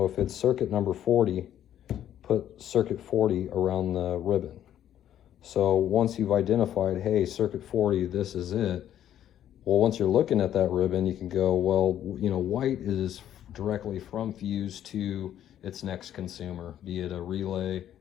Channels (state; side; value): quieter; right; 11.0 dB